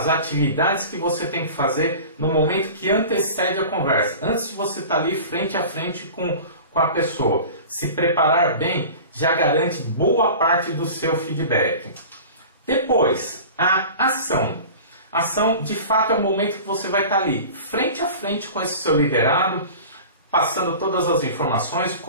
atividades que você tem que fazer no momento que antecede a conversa, antes de você estar ali frente a frente com a pessoa. Se preparar bem já garante boa parte do seu feedback. Depois, a ação. Ação, de fato, é o momento que você vai estar ali, frente a frente com esse seu liderado, passando todas as informações,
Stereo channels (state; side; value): inverted; both; correlation -0.38